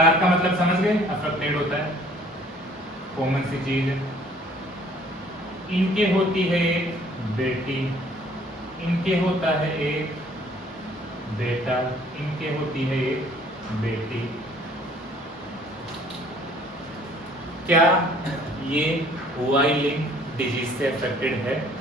का मतलब समझ गए? अफेक्टेड होता है, कॉमन सी चीज है। इनके होती है एक बेटी, इनके होता है एक बेटा, इनके होती है एक बेटी। क्या ये वाई लिंक डिजीज से अफेक्टेड है?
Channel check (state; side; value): normal; both; correlation 0.57